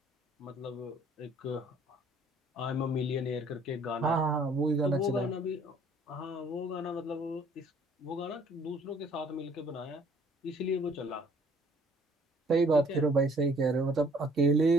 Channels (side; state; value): both; normal; correlation 0.59